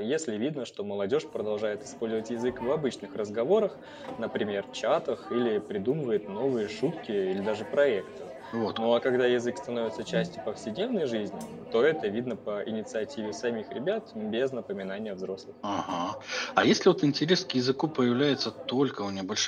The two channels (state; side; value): identical; both; correlation 1.00